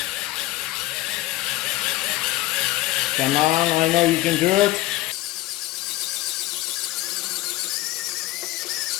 Come on, I know you can do it.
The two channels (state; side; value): quieter; right; 17.3 dB